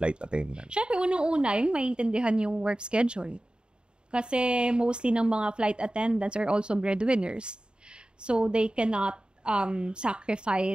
attendant? Siyempre, unang-una, yung maintindihan yung work schedule. Kasi mostly ng mga flight attendants are also breadwinners. So, they cannot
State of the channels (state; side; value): late; left; 0.050 ms